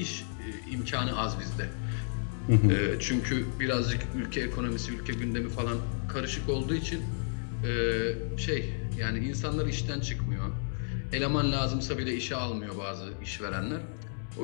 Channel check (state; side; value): silent; right; digital silence